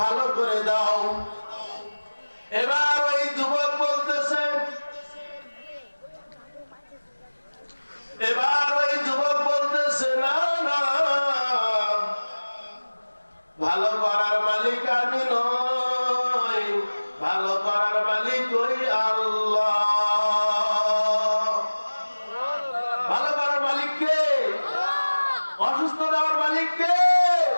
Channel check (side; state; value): both; inverted; correlation -1.00